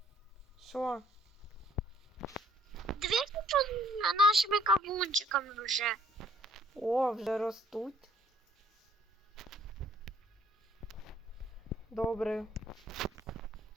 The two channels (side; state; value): both; normal; correlation 0.62